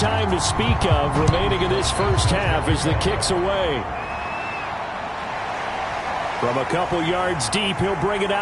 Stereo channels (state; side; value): identical; both; correlation 1.00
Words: to speak of remaining in this first half as the kick's away. From a couple yards deep, he'll bring it